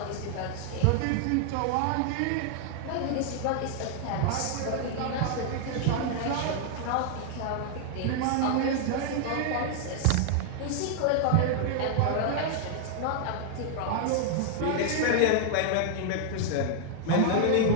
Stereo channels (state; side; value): different; both; correlation 0.00